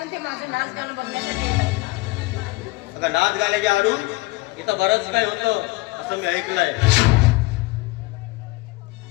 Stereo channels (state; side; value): quieter; right; 22.6 dB